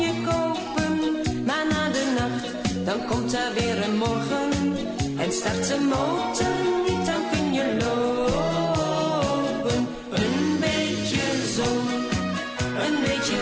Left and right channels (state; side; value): identical; both; correlation 1.00